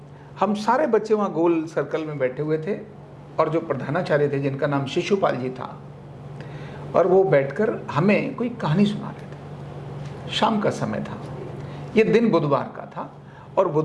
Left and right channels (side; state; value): both; identical; correlation 1.00